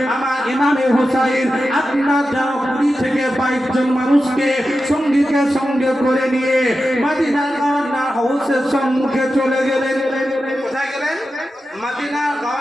আমার ইমামে হুসাইন আপনার যেন 20 থেকে 22 জন মানুষকে সঙ্গীকে সঙ্গে করে নিয়ে মদিনার গভর্নর হাউসের সম্মুখে চলে গেলেন। কোথায় গেলেন? মদিনার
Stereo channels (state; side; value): normal; both; correlation 0.91